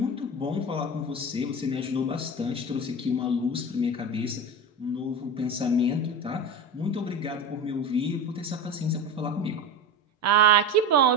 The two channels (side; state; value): both; normal; correlation 0.26